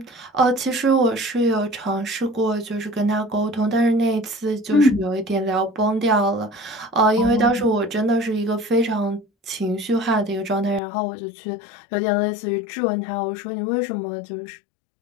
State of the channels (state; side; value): drops out; right; at 10.8 s